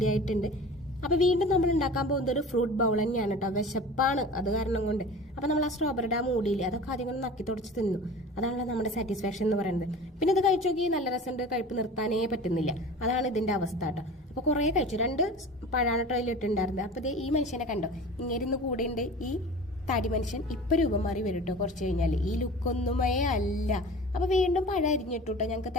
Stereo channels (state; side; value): normal; both; correlation 0.38